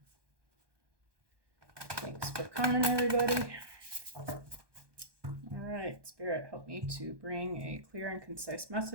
Thanks for coming, everybody. All right, Spirit, help me to bring a clear and concise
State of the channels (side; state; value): left; late; 1.2 ms